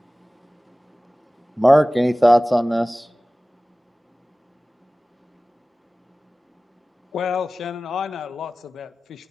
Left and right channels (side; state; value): both; normal; correlation 0.97